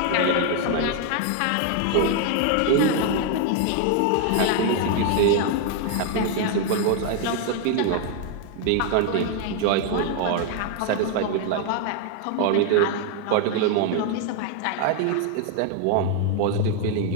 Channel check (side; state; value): both; different; correlation 0.00